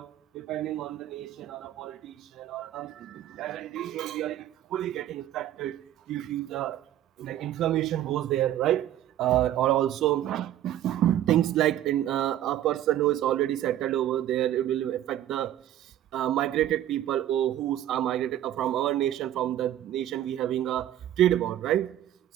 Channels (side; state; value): left; quieter; 12.3 dB